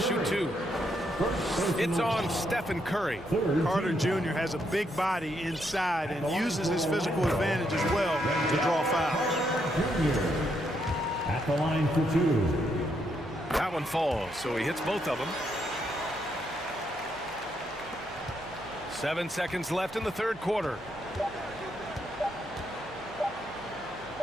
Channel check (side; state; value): right; noise; hum, 22 dB below the sound